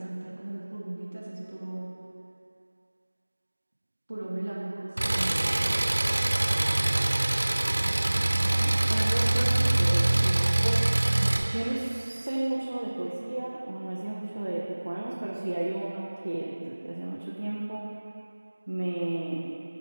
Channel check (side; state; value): both; inverted; correlation -1.00